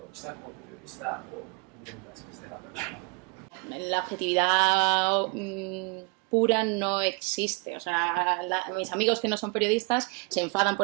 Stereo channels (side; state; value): left; quieter; 31.2 dB